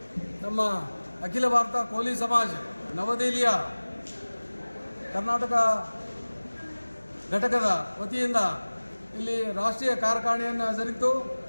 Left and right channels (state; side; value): inverted; both; correlation -1.00